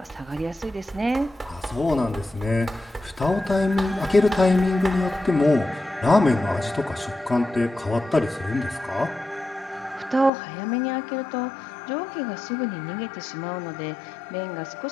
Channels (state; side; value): drops out; right; at 10.3 s